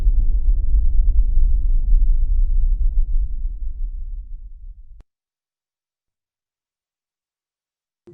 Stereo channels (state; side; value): identical; both; correlation 1.00